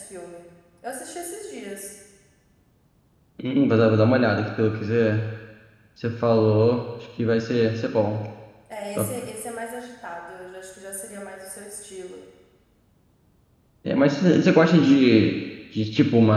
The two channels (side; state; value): both; identical; correlation 1.00